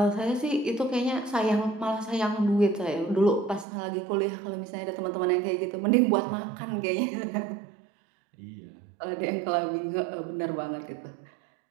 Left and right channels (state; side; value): drops out; left; at 3.7 s